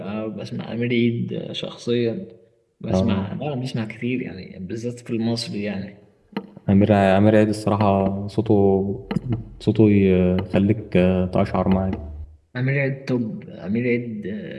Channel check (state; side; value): identical; both; correlation 1.00